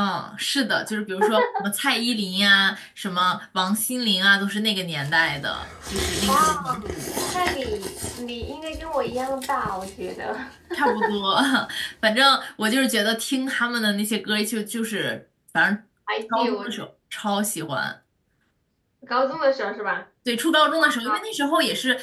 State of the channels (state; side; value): identical; both; correlation 1.00